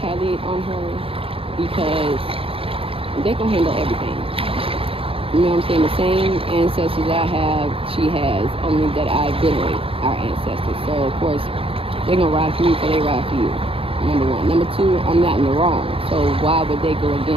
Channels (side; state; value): left; late; 0.27 ms